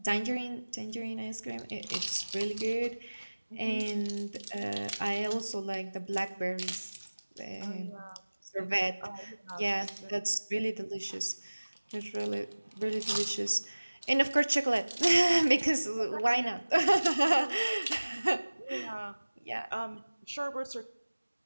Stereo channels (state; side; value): inverted; both; correlation -1.00